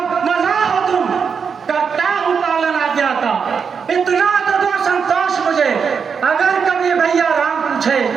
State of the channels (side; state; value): left; quieter; 6.2 dB